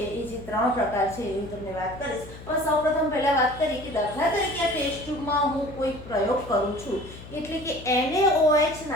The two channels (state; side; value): noise; left; hum, 15 dB below the sound